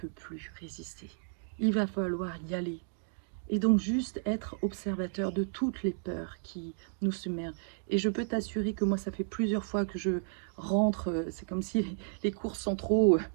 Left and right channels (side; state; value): left; silent; digital silence